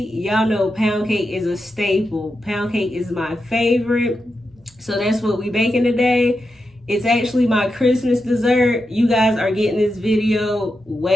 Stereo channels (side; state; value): both; normal; correlation 0.88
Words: y'all know pound cake is a staple. Pound cake is my favorite. So that's what we baking today. It's actually my Christmas dessert. You guys are getting this video